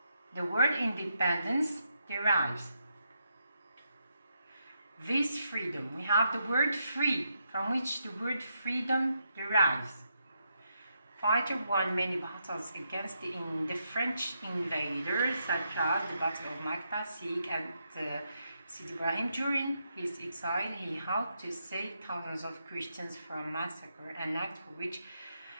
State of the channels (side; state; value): both; inverted; correlation -0.81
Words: the word independence derives. This freedom, we have the word free, from which the word freedom derives. Fighter won many battles against the French invaders, such as the Battle of Makta, Sikh, and Sidi Ibrahim. During his exile, he helped to save thousands of Christians from massacre, an act for which